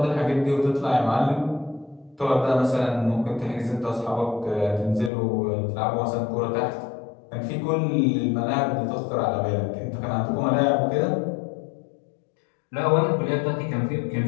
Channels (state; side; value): drops out; right; at 5.1 s